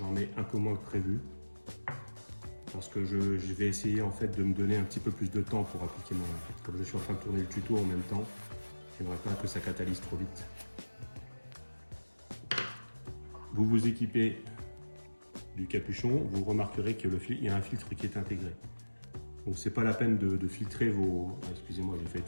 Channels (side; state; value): both; inverted; correlation -1.00